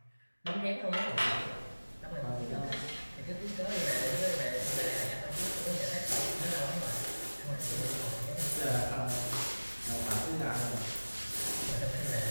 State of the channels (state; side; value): inverted; both; correlation -1.00